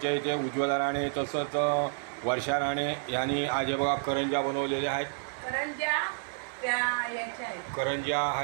इथे उज्ज्वला राणे तसंच वर्षा राणे यांनी आज हे बघा करंज्या बनवलेल्या आहेत. करंज्या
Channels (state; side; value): silent; left; digital silence